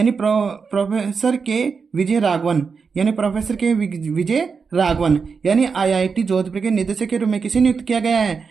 प्रोफेसर के विजय राघवन। यानी प्रोफेसर के विजय राघवन, यानी IIT जोधपुर के निदेशक के रूप में किसे नियुक्त किया गया है?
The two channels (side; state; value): left; quieter; 5.4 dB